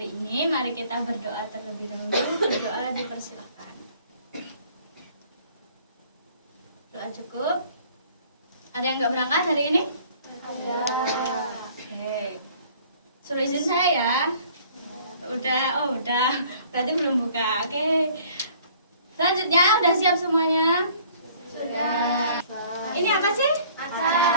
ini, mari kita berdoa terlebih dahulu. Berdoa dipersilakan. Doa cukup. Ada yang nggak berangkat hari ini? Ada. Oke. Suruh izin saya ya. Udah. Berarti belum buka. Oke. Selanjutnya udah siap semuanya? Sudah. Ini apa sih?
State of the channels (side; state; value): both; inverted; correlation -0.55